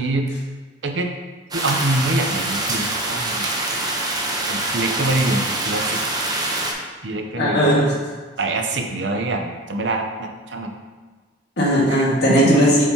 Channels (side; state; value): both; normal; correlation 0.34